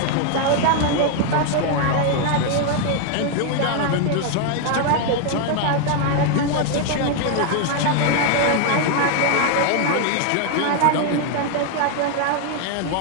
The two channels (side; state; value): both; different; correlation 0.00